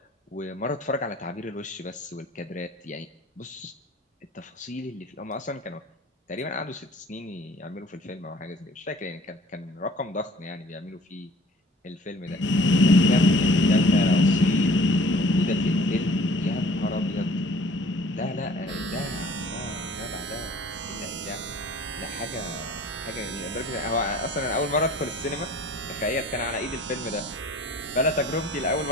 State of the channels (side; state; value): both; normal; correlation 0.50